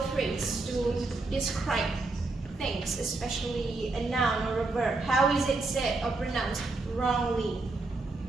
phrase to describe things, especially a noun or a verb. How is it said or pronounced wrongly?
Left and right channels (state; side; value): quieter; left; 3.4 dB